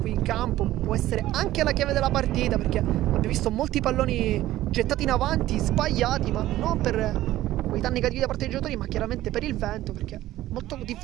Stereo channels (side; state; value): left; quieter; 14.9 dB